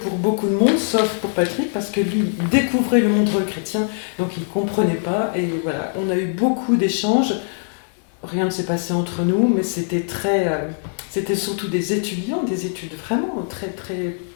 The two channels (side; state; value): right; silent; digital silence